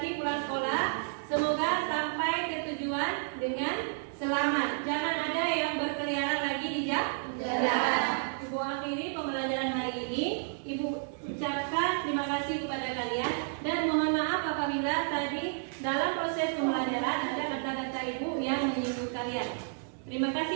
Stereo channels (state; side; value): silent; left; digital silence